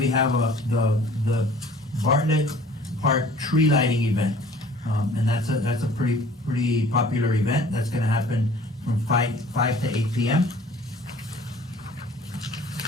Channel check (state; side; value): normal; both; correlation 0.51